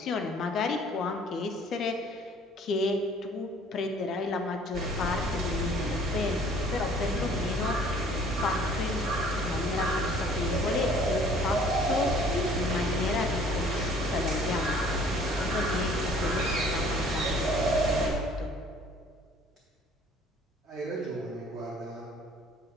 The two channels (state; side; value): normal; both; correlation 0.54